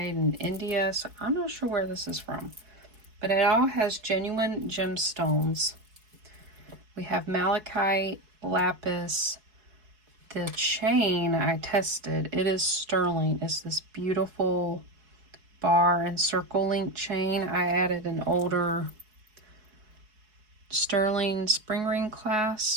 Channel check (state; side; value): late; left; 4.7 ms